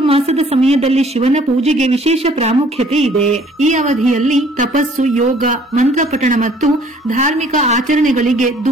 ಸಮಯದಲ್ಲಿ ಶಿವನ ಪೂಜೆಗೆ ವಿಶೇಷ ಪ್ರಾಮುಖ್ಯತೆ ಇದೆ. ಈ ಅವಧಿಯಲ್ಲಿ ತಪಸ್ಸು, ಯೋಗ, ಮಂತ್ರ ಪಠಣ ಮತ್ತು ಧಾರ್ಮಿಕ ಆಚರಣೆಗಳಿಗೆ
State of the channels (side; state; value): both; normal; correlation 0.57